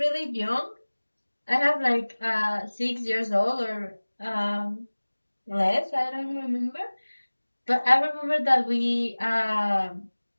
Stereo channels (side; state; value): both; inverted; correlation -1.00